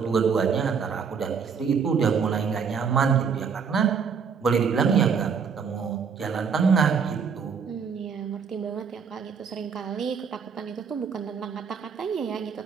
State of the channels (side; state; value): left; quieter; 6.2 dB